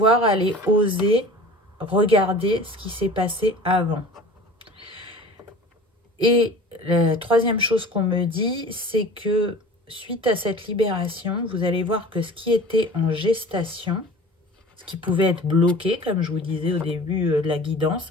aller oser regarder ce qui s'est passé avant. Et la troisième chose qu'on me dit, c'est que suite à cette libération, vous allez voir que ce qui était en gestation, ce qui pouvait être bloqué, comme je vous disais au début de la guidance,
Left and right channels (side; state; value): both; normal; correlation 0.41